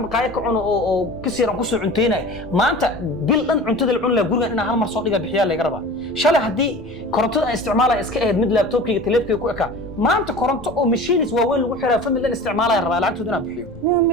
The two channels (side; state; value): left; noise; rumble, 19 dB below the sound